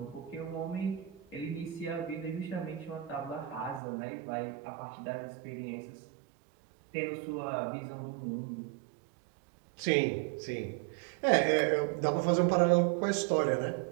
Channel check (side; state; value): left; drops out; at 3.8 s